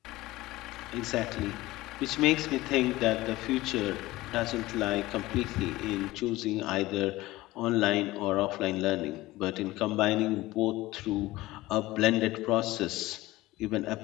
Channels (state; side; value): quieter; right; 18.4 dB